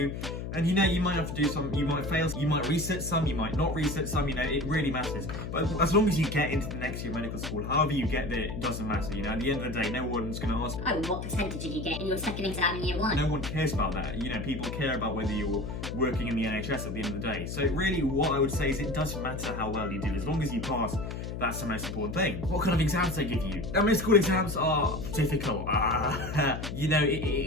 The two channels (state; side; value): noise; left; hum, 6 dB below the sound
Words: and you might have to do some, you might fail, you might reset some, you might not reset some, it really matters. But as long as you get into the next year of medical school, however you get there, it doesn't matter, at the end of the day, no one's going to ask, oh, what percentage did you get in your second exam in year 1? No one cares about that, people care about whether you're working in the NHS at the end of the day. So really, what I would say is it doesn't matter how well you do, as long as you pass, that's the most important thing. What kind of exams they give you? Now, med school exams are difficult.